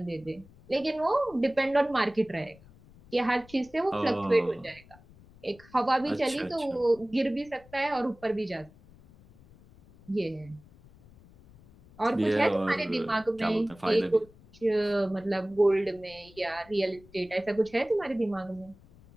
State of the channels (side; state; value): left; noise; rumble, 24 dB below the sound